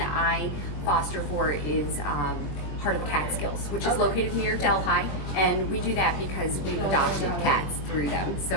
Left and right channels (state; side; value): late; right; 21 ms